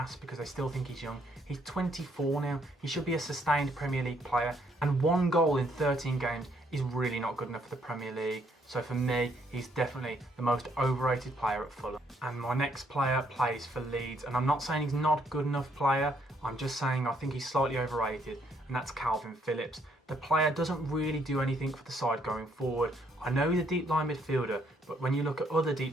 because they still think he's young. He's 24 now. He should be a sustained Premier League player, and 1 goal in 13 games is really not good enough for the Premier League. So for me, he's definitely the most overrated player at Fulham. And my next player plays for Leeds, and I'm not saying he's not a good enough player, I'm just saying I think he's slightly overrated, and that's Calvin Phillips. The player doesn't really do anything for the side going forward. I know he's a deep line midfielder, but when you look at other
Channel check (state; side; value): normal; both; correlation 0.70